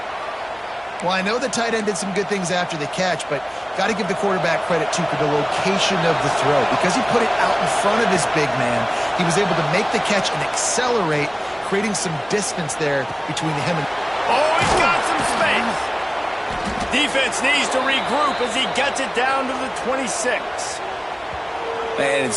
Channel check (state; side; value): identical; both; correlation 1.00